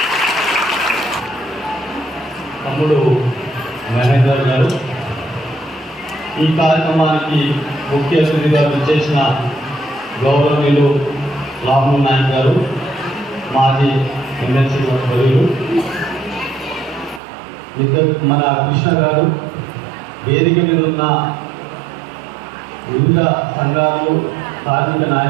తమ్ముడు మహేందర్ గారు, ఈ కార్యక్రమానికి ముఖ్య అతిథిగా విచ్చేసిన గౌరవనీయులు రామ్మోహన్ నాయక్ గారు, మాజీ ఎమ్మెల్సీ వర్యులు, మన కృష్ణ గారు, వేదిక మీద ఉన్న వివిధ సంఘాలు, కార్మిక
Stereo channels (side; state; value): left; drops out; at 17.2 s